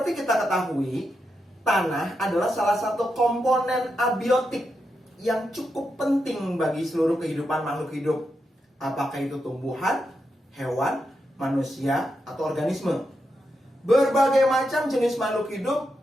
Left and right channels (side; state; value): both; normal; correlation 0.85